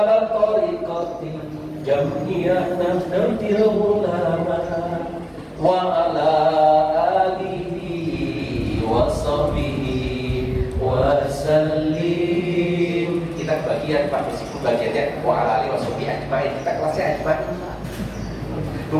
tariqati jam'iyah Nahdlatul Ulama wa ala alihi wa sahbihi wa sallim. Kita bagian Pak, meskipun bagiannya wa ala alihi wa sahbihi ajmain, kita kelasnya ajmain.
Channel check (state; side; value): identical; both; correlation 1.00